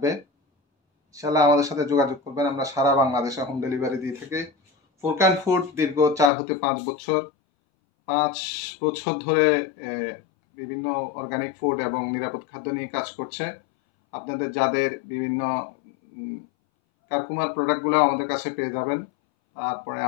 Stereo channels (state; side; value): drops out; right; at 6.3 s